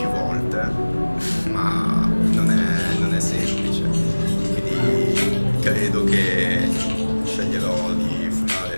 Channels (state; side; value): inverted; both; correlation -1.00